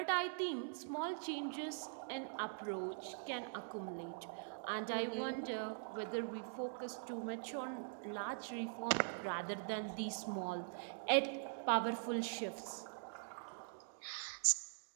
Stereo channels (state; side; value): silent; left; digital silence